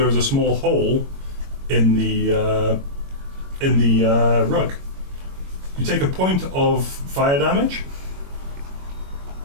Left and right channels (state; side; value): late; left; 21 ms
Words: is a small hole in the rug. You take a point of fire damage.